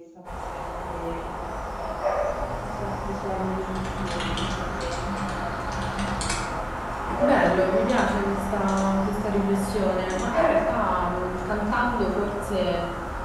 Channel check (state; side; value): identical; both; correlation 1.00